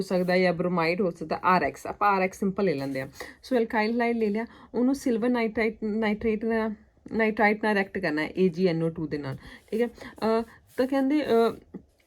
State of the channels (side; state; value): both; identical; correlation 1.00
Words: ਸਕਦਾ, ਜਾਂ ਬ੍ਰੋਮਾਈਡ ਹੋ ਸਕਦਾ, RX, ਆਪਾਂ RX ਸਿੰਪਲ ਲੈ ਲੈਂਦੇ ਆ। ਸੋ ਅਲਕਾਈਲ ਹਲਾਈਡ ਲੈ ਲਿਆ, ਉਹਨੂੰ ਸਿਲਵਰ ਨਾਈਟਰਾਈਟ ਨਾਲ ਰਿਐਕਟ ਕਰਨਾ ਹੈ AgNO2 ਦੇ ਨਾਲ, ਠੀਕ ਹੈ। ਤਾਂ ਕਹਿੰਦੇ